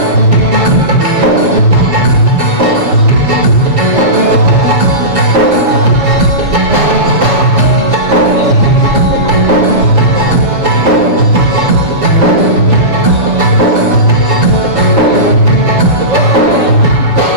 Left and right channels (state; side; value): late; left; 7.0 ms